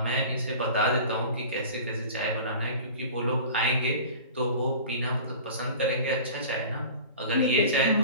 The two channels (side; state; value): both; inverted; correlation -0.39